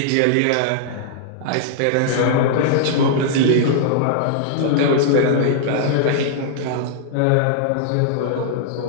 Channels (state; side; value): different; both; correlation -0.01